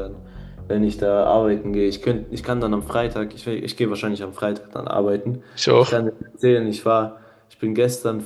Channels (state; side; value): identical; both; correlation 1.00